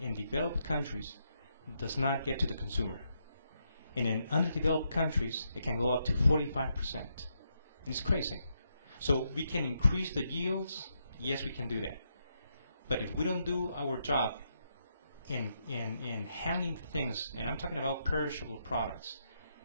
developed countries does not get to the consumer. And in underdeveloped countries, it can go up to 45%. And it's crazy. So we can increase the yields. Yes, we can do that. But if we don't do our job in handling things, and I'm talking about perishable products,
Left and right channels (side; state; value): both; inverted; correlation -0.80